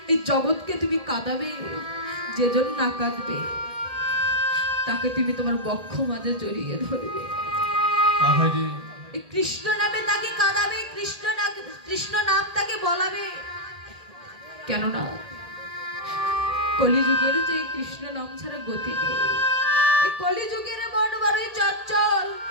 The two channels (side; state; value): left; late; 1.8 ms